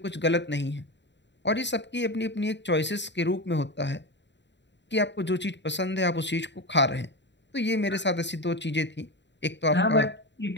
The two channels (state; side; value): late; right; 0.52 ms